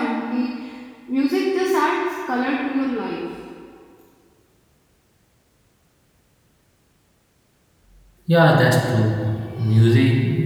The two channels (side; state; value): both; identical; correlation 1.00